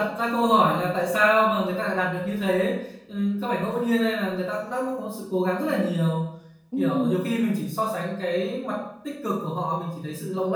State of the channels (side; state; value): both; identical; correlation 1.00